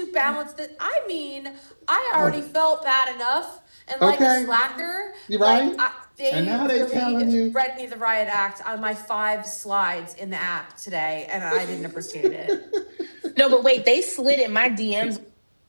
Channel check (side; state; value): both; inverted; correlation -1.00